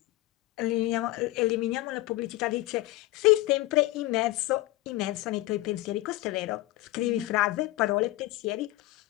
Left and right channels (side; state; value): right; quieter; 18.0 dB